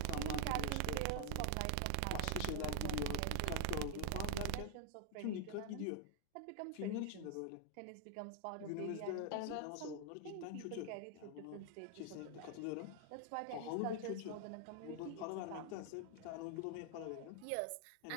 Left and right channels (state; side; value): different; both; correlation 0.00